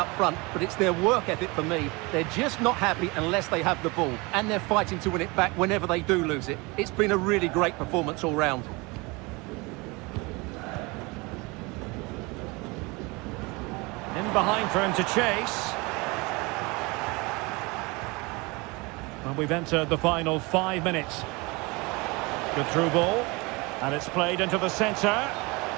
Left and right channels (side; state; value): left; quieter; 25.9 dB